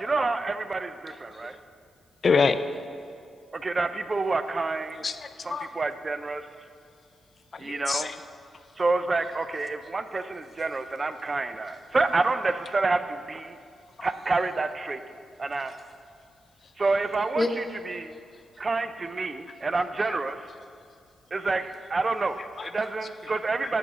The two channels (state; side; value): normal; both; correlation 0.91